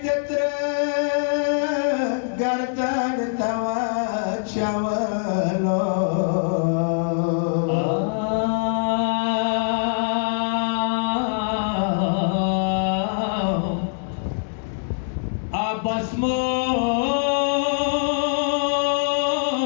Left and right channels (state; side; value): silent; right; digital silence